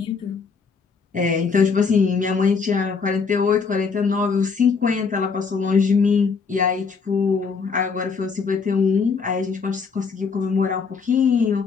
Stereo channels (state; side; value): quieter; right; 5.2 dB